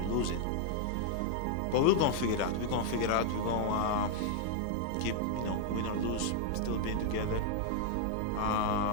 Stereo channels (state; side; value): different; both; correlation -0.01